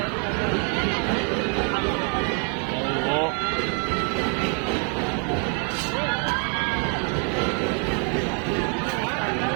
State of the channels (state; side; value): quieter; left; 39.1 dB